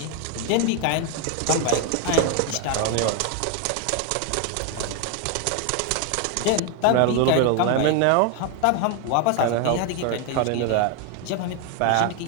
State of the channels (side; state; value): both; different; correlation 0.01